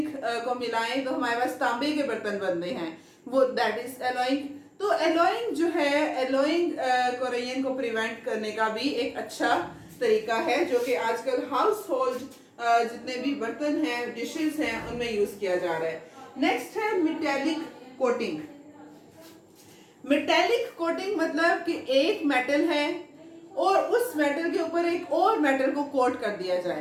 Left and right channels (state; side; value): identical; both; correlation 1.00